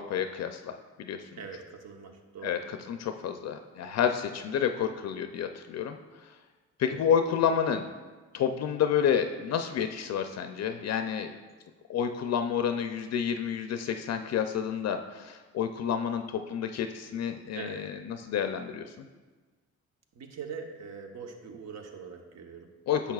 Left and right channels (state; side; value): quieter; right; 7.4 dB